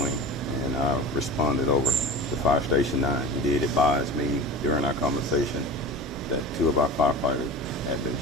and I responded over to Fire Station 9. He did advise me during our conversation that 2 of our firefighters had been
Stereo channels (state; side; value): normal; both; correlation 0.32